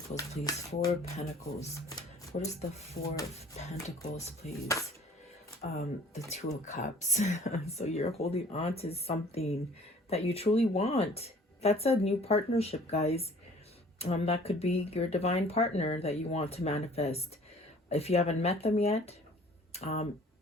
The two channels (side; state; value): both; normal; correlation 0.52